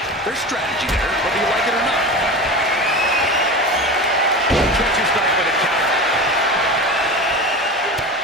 There's strategy there, whether you like it or not. Catches back with a counter.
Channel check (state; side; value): normal; both; correlation 0.29